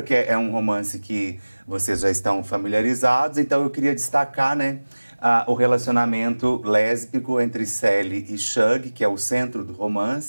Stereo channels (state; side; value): inverted; both; correlation -1.00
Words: que é um romance que vocês já estão familiarizados, então eu queria destacar, né, o relacionamento lésbico entre Sally e Shug, que é o centro do